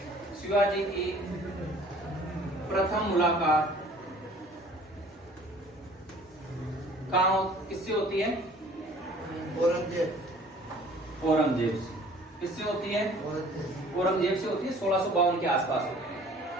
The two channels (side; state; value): both; normal; correlation 0.52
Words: शिवाजी की प्रथम मुलाकात कहाँ किससे होती है? औरंगजेब से। किससे होती है? औरंगजेब से होती है। 1652 के आसपास होती है,